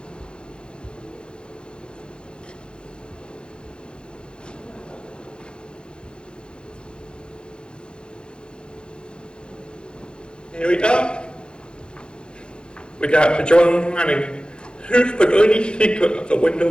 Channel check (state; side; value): late; right; 0.051 ms